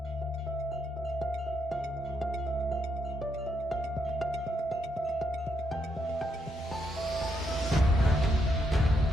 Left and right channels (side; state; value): both; normal; correlation 0.78